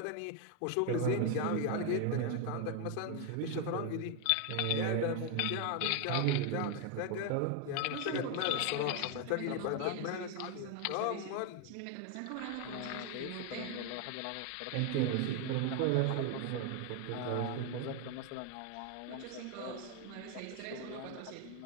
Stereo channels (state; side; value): different; both; correlation 0.01